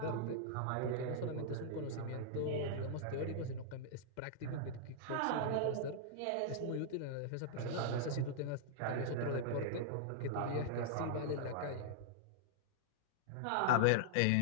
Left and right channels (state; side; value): different; both; correlation -0.02